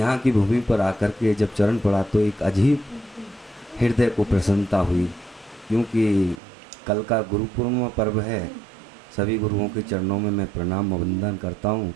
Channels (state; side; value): drops out; left; at 6.4 s